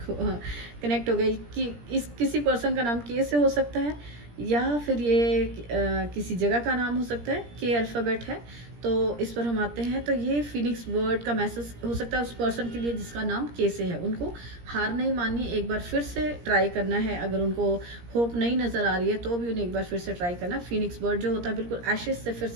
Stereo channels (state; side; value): late; left; 17 ms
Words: कनेक्ट हो गया कि इस किसी पर्सन का नाम के से हो सकता है या फिर ये किसी जगह का नाम हो सकता है। के अल्फ़ाबेट है, तो इस पर हम आते हैं। तो ये फिनिक्स बर्ड का मैसेज हो सकता है उस पर्सन के लिए जिसका नाम के से है। उनको हार नहीं माननी, एक बार फिर से ट्राई करना है। अगर उनको होप नहीं नज़र आ रही है तो भी उन्हें एक बार फिर से ट्राई करना। फिनिक्स बर्ड जो होता है बिल्कुल एशेज से फिर